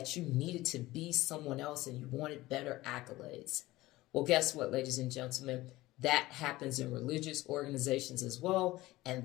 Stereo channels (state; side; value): quieter; right; 18.1 dB